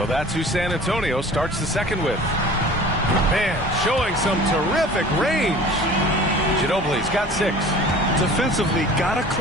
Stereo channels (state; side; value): normal; both; correlation 0.44